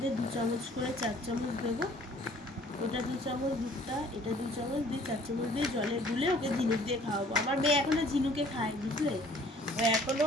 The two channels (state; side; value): normal; both; correlation 0.55